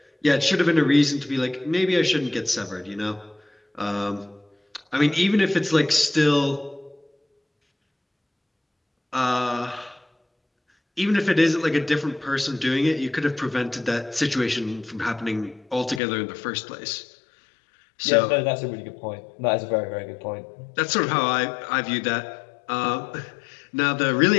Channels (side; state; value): right; drops out; at 16.0 s